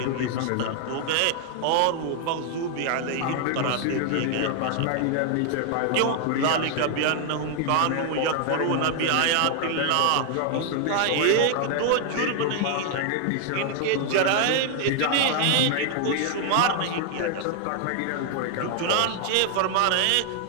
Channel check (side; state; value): both; different; correlation 0.00